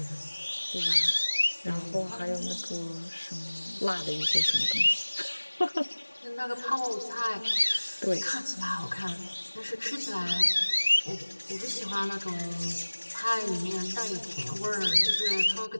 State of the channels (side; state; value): both; inverted; correlation -1.00